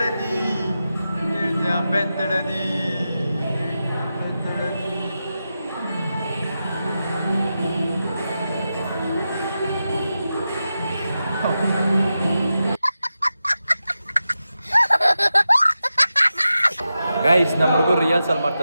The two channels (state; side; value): inverted; both; correlation -0.90